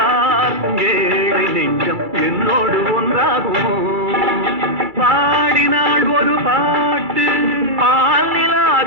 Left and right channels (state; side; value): late; left; 2.3 ms